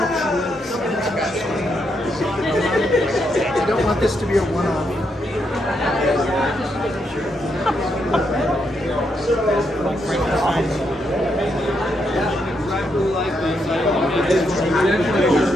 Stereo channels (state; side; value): normal; both; correlation 0.79